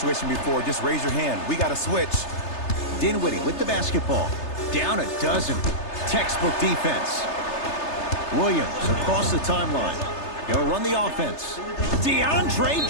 before. Just raise your hand. We got to switch. Dinwiddie with the basketball. Down a dozen. Textbook defense. Williams across the timeline. He'll run the offense. DeAndre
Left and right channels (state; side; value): late; right; 3.3 ms